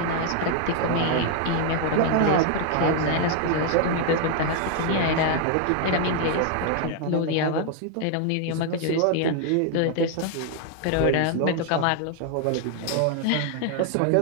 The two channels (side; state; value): both; different; correlation 0.00